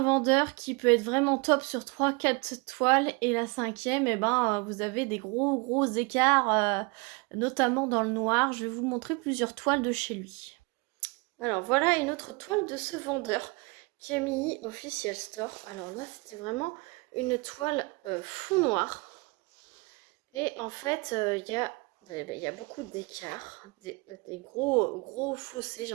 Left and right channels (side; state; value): left; quieter; 28.8 dB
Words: vendeur qui peut être vraiment top sur 3-4 toiles et la cinquième, vous avez des gros écarts, notamment dans le noir. Je vais vous montrer plusieurs toiles de chez lui. Alors voilà une autre toile de ce vendeur, Camille Official Store. Alors là, c'était vraiment une toile fond noir. Et en fait, il y a beaucoup d'écarts, des gros fossés, j'ai